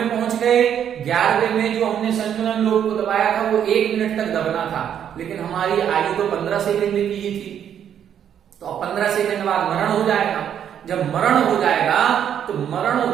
पहुंच गए, 11वें में जो हमने संयोजन लोभ को दबाया था वो 1 मिनट तक दबना था, लेकिन हमारी आयु तो 15 सेकंड की ही थी, तो अब 15 सेकंड बाद मरण हो जाएगा। जब मरण हो जाएगा तो मरण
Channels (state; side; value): quieter; left; 9.2 dB